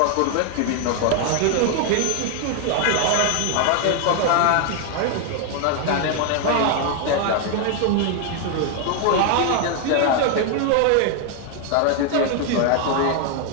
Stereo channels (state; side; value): different; both; correlation 0.01